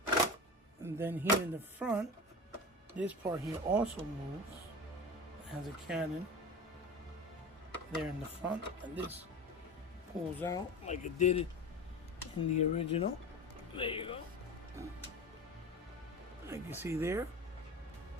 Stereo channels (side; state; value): both; normal; correlation 0.30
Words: And then here in the front, this part here also moves. It has a cannon there in the front, and this pulls out like it did in the original. There you go. Like you see there.